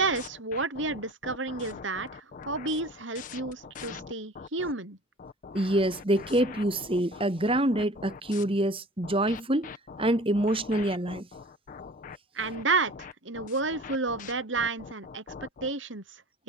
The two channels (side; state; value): both; normal; correlation 0.42